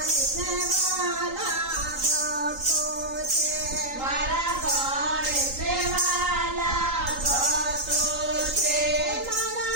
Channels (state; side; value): late; left; 3.8 ms